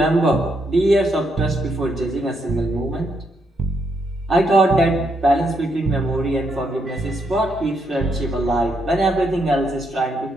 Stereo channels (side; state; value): both; normal; correlation 0.77